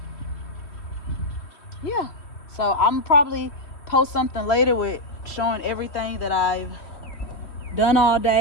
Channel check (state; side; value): late; right; 3.2 ms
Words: Yeah. So I'm probably post something later with showing everything that I've done all